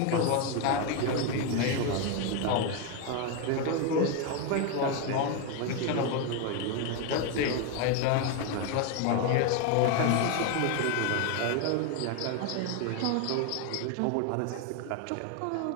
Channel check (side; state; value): both; different; correlation 0.01